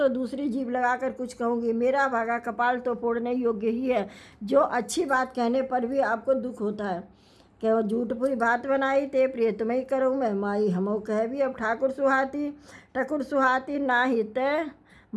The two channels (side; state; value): both; identical; correlation 1.00